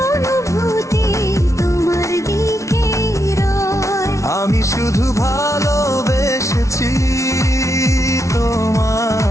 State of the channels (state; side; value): late; right; 0.14 ms